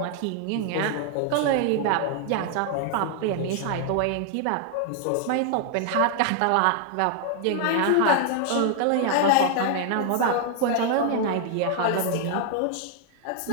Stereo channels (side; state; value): both; different; correlation 0.00